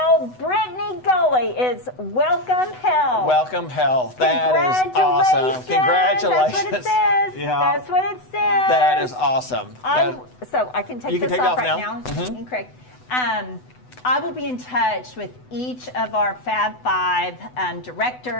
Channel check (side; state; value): right; late; 8.0 ms